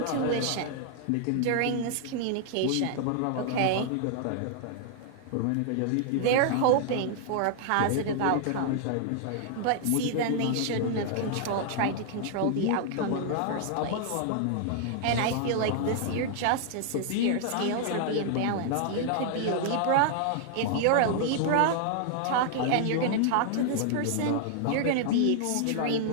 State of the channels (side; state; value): both; different; correlation 0.00